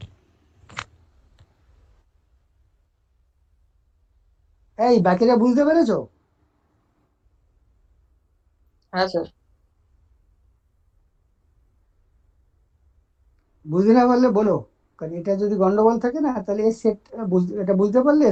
এই বাকিটা বুঝতে পেরেছো? হ্যাঁ স্যার। বুঝতে না পারলে বলো, কারণ এটা যদি গন্ডগোল থাকে না তাহলে এর সেট এটা বুঝতে পারলে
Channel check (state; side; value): identical; both; correlation 1.00